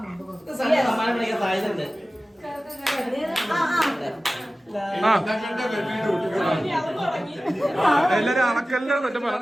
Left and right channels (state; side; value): normal; both; correlation 0.96